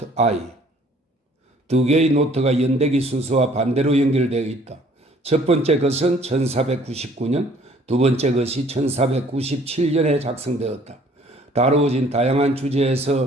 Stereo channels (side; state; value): both; normal; correlation 0.57